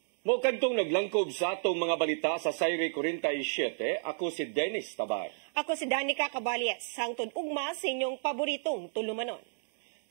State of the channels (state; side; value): silent; left; digital silence